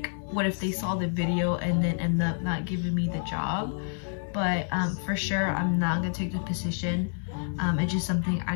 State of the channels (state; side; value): silent; right; 59 dB below the other